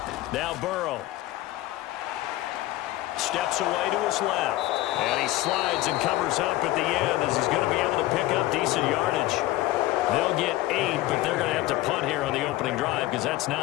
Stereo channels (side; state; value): right; quieter; 16.6 dB